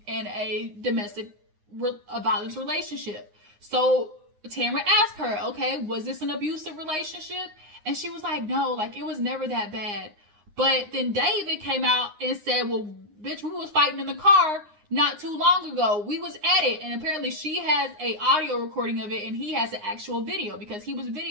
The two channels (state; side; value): late; left; 9.7 ms